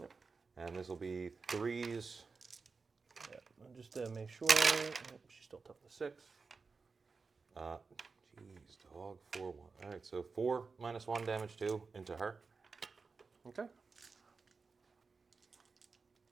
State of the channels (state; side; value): quieter; left; 4.6 dB